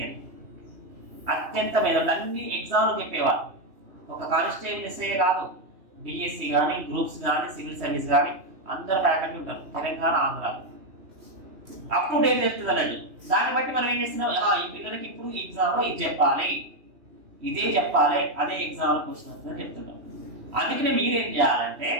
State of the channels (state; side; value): late; left; 3.1 ms